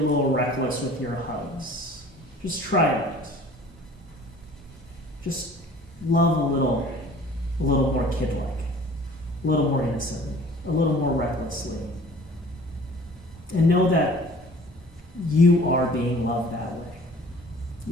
reckless with your hugs. Just try it. Just love a little more kid-like, a little more innocently, a little more recklessly. And know that you are being loved that way.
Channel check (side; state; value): both; normal; correlation 0.49